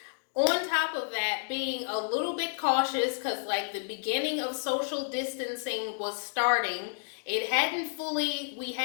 on top of that, being a little bit cautious because, like, the beginning of social distancing was starting. We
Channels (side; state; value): right; silent; digital silence